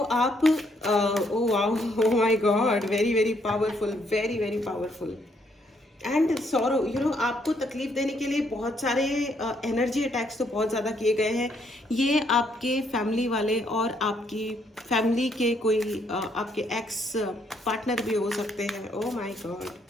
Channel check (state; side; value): normal; both; correlation 0.71